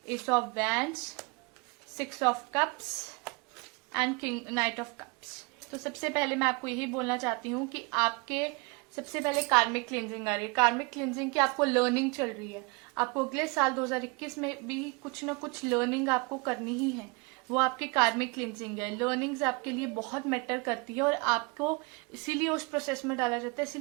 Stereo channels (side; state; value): left; quieter; 29.0 dB